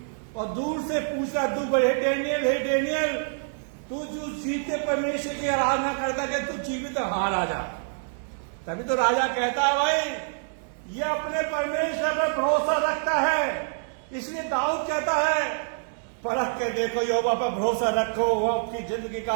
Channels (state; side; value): silent; left; digital silence